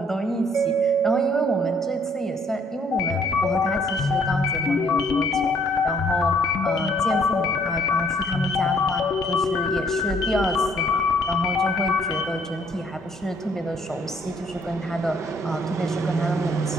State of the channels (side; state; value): both; normal; correlation 0.63